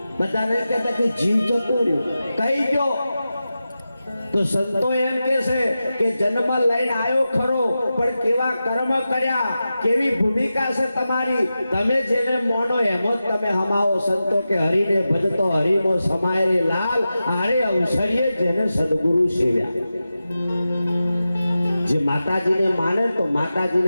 બધાને કહેતા કે જીવ જતો રહ્યો કઈ ગયો? તો સંતો એમ કે છે કે જન્મ લઈને આવ્યો ખરો, પણ કેવા કર્મ કર્યા, કેવી ભૂમિકા છે તમારી, તમે જેને મોનો એમ જ તમે હમાવો. સંતો કે હરિને ભજતો હરિમો સમાય રે લાલ, આરે અવસરીએ જેને સદગુરુ સેવ્યા. જે માતાજીને માને તો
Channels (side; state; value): both; inverted; correlation -0.92